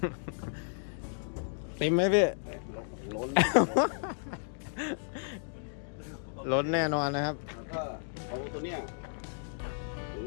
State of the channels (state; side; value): silent; right; digital silence